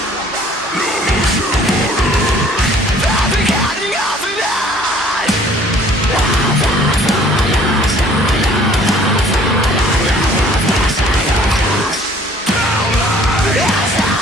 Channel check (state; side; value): normal; both; correlation 0.55